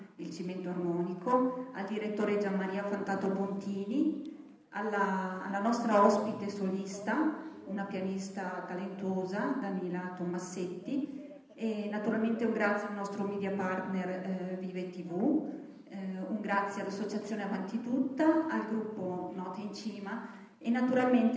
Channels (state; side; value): identical; both; correlation 1.00